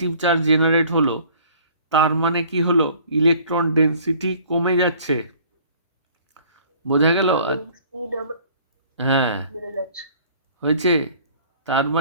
চার্জ জেনারেট হলো, তার মানে কি হলো, ইলেকট্রন ডেনসিটি কমে যাচ্ছে, বোঝা গেল? সি ডবল হ্যাঁ, বেড়ে যাচ্ছে। হয়েছে, তার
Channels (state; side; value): inverted; both; correlation -0.53